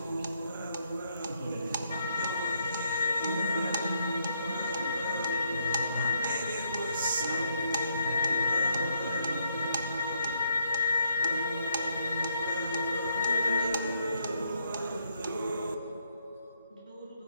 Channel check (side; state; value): both; inverted; correlation -0.74